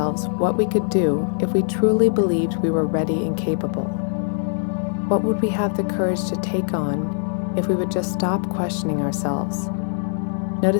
what we could do if we truly believed we were ready and capable. What would we have the courage to take on if we would just stop questioning ourselves?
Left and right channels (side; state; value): right; silent; digital silence